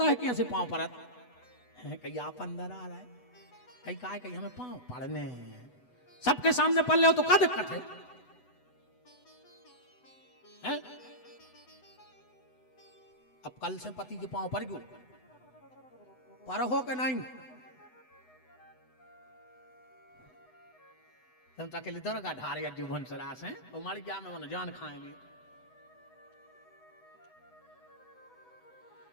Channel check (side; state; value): right; late; 8.1 ms